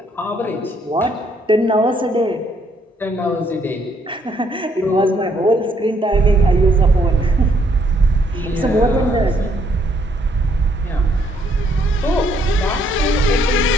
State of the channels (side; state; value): both; normal; correlation 0.69